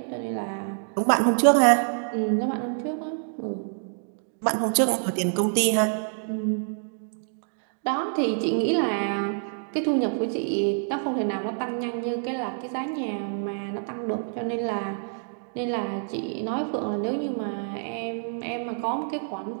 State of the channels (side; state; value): left; silent; digital silence